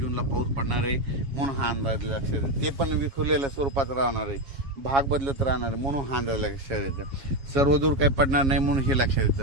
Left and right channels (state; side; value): late; left; 7.3 ms